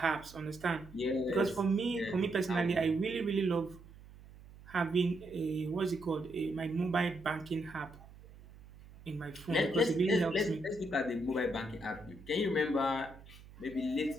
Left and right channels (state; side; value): noise; right; hum, 20 dB below the sound